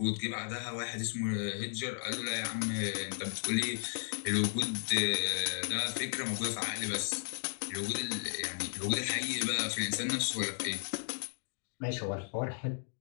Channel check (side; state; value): right; silent; digital silence